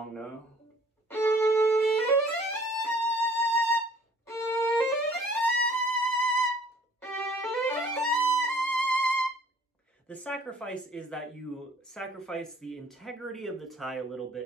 note. The sacrifice is that you sacrifice the integrity of the tie a little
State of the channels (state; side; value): normal; both; correlation 0.56